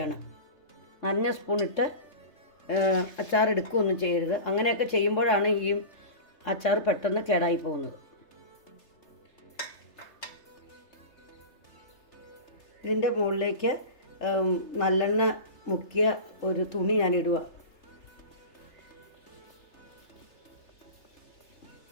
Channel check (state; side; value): late; right; 3.3 ms